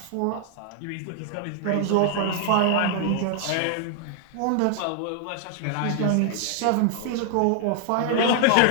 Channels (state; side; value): different; both; correlation 0.00